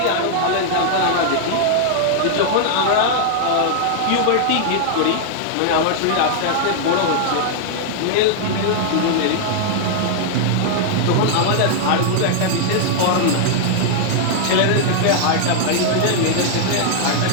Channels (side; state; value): both; different; correlation 0.00